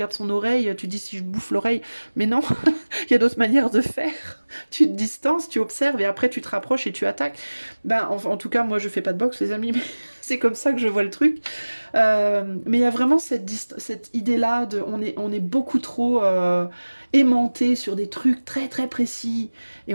son oreille, tu dis si je bouffe l'oreille. Mais non, il y a d'autres manières de faire. Tu te distances, tu observes et après tu te rapproches et tu attaques. Ben, en tout cas, moi je fais pas de boxe, les amis, mais c'est comme ça que je vois le truc. Mais il y a vraiment cette idée-là de on est beaucoup trop aimanté sur des trucs très très précis et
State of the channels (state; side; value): inverted; both; correlation -1.00